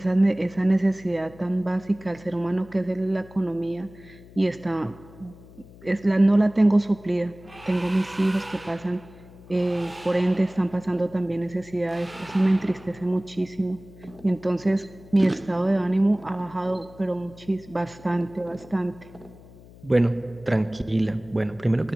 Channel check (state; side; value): noise; left; hum, 21 dB below the sound